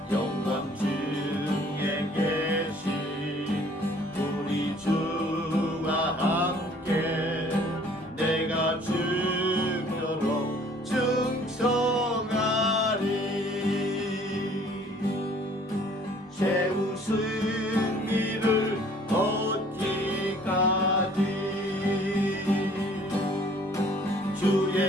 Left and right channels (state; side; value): normal; both; correlation 0.56